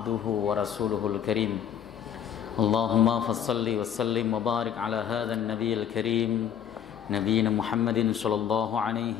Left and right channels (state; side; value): quieter; right; 9.2 dB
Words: wa rasuluhul karim. Allahumma fassalli wa sallim wa barik ala hadzal nabiyil karim nabiyina Muhammadin sallallahu